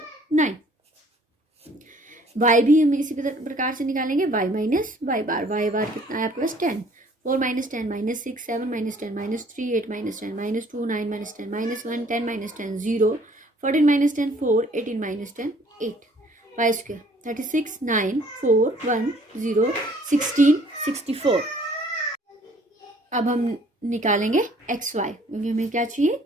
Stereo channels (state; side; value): normal; both; correlation 0.58